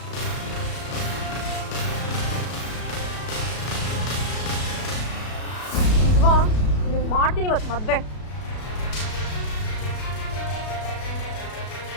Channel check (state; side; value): late; right; 33 ms